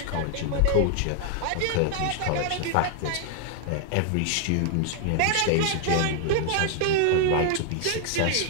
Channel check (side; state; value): both; different; correlation 0.00